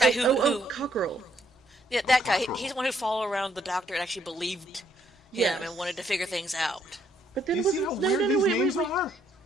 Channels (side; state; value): both; normal; correlation 0.70